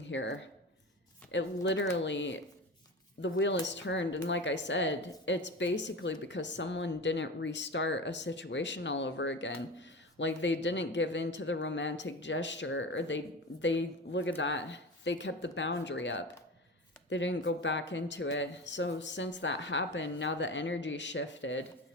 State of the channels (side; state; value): both; normal; correlation 0.28